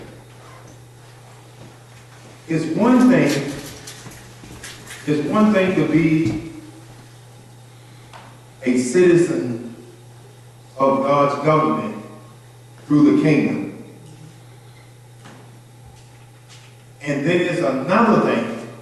It's one thing to be a citizen of God's government through the kingdom. And then it's another thing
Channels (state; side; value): identical; both; correlation 1.00